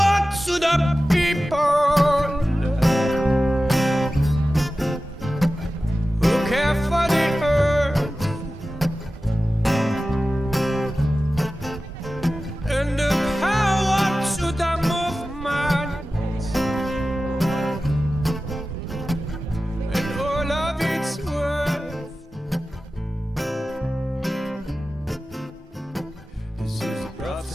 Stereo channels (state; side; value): normal; both; correlation 0.95